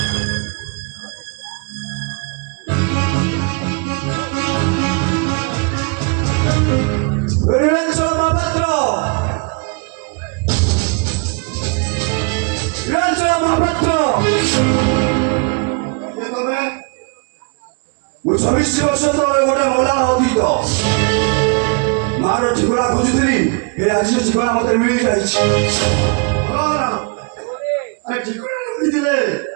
ମହାପାତ୍ର, ନୀଳାଞ୍ଚଳ ମହାପାତ୍ର, ମୁଁ 26 ବର୍ଷ ତଳେ ଗୋଟେ ମଲା ଅତୀତ ମାର ଠିକଣା ଖୋଜୁଥିଲି। ଏ ଆଜି ସେ ଠିକଣା ମତେ ମିଳିଯାଇଛି।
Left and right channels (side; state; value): left; quieter; 33.2 dB